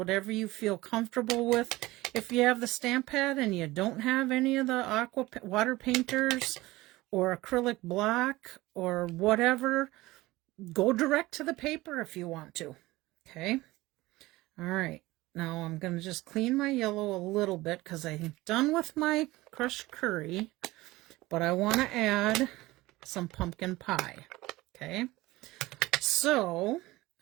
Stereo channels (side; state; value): left; quieter; 19.2 dB